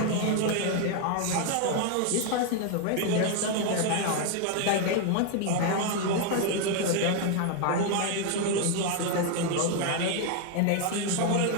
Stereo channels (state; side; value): different; both; correlation 0.01